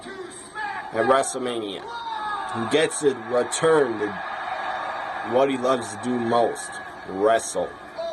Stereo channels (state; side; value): identical; both; correlation 1.00